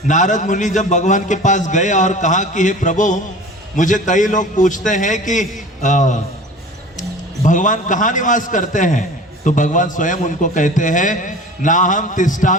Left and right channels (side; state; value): both; normal; correlation 0.40